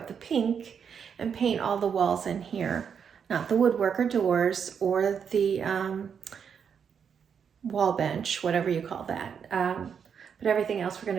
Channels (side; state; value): left; quieter; 7.2 dB